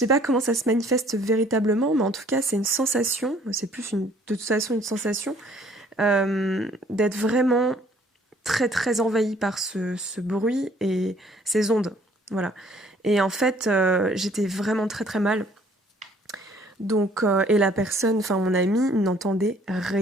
pas comment ça se manifeste véritablement, mais en tout cas, c'est une sensation, c'est plus de toute façon une sensation, d'être vraiment très très envahie par ce bruit et ces ondes. Voilà. Et en fait, j'étais vraiment très très mal. Donc, et la personne, enfin mon ami, n'entendait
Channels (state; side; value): normal; both; correlation 0.59